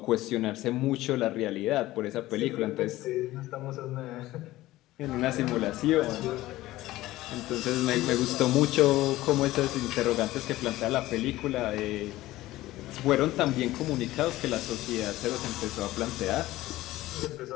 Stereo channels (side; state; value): right; quieter; 16.8 dB